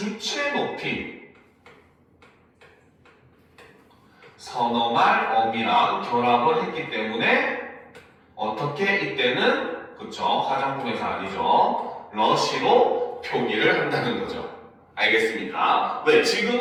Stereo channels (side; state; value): both; identical; correlation 1.00